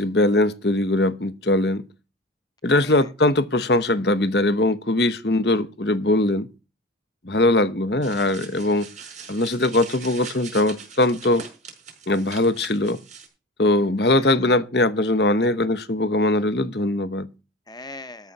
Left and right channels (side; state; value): both; normal; correlation 0.32